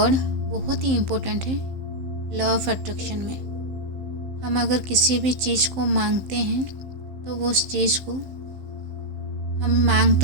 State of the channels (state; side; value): late; left; 15 ms